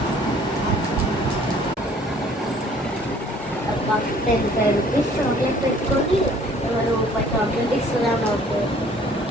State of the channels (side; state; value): both; normal; correlation 0.56